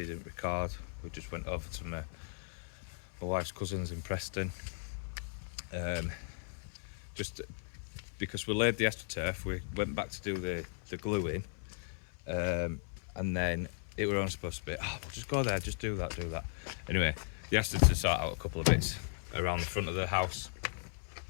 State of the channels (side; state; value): right; silent; 53 dB below the other